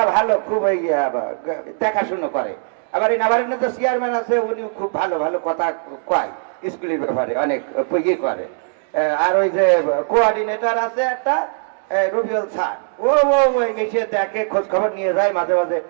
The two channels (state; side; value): silent; left; digital silence